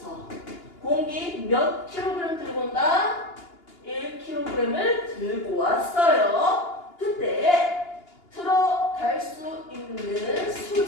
공기 몇 kg 들고 온다? 1kg을 들고 왔어요. 그때 들어갈 수 있는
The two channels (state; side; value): late; right; 2.8 ms